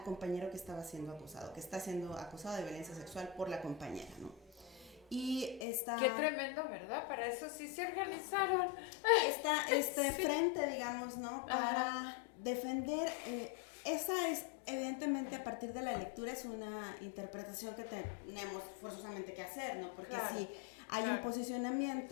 compañero que estaba siendo acusado, que está siendo acusado de violencia sexual por la compañera, ¿no? Y esta... Qué tremendo, ¿verdad? Para eso sí se organizaron. Este frente, digamos, ¿no? Para defender, esa es evidentemente a partir de la lectura es una interpretación que tenemos forzosamente que hacer, ¿no? Porque sí hay un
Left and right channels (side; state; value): right; drops out; at 5.7 s